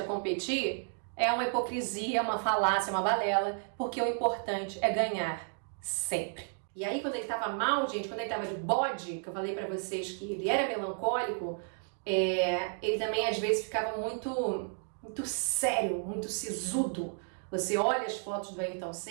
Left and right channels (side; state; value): left; silent; 56 dB below the other